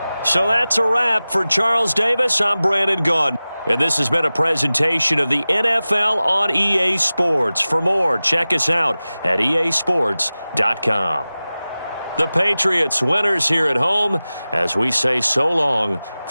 So that's a wrap for Charles Davis. I'm Brandon Gaudin. And this has been a presentation of the NFL on EA Sports. For more, check us out at easports.com. The Patriots winners here at home as we say so long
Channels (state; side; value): inverted; both; correlation -0.97